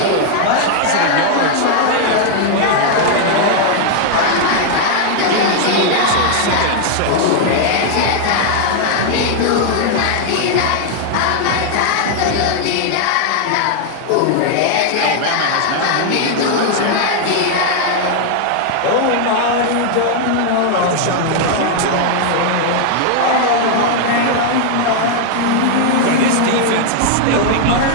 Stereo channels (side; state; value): both; different; correlation 0.00